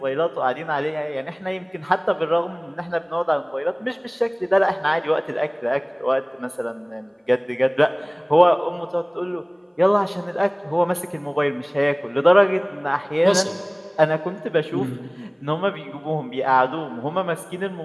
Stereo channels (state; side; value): identical; both; correlation 1.00